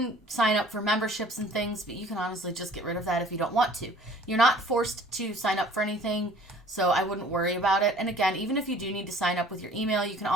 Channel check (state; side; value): normal; both; correlation 0.51